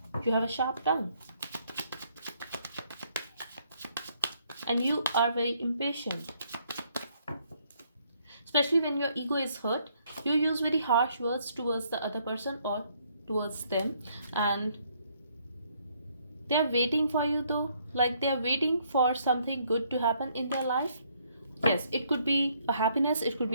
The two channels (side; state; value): both; inverted; correlation -0.68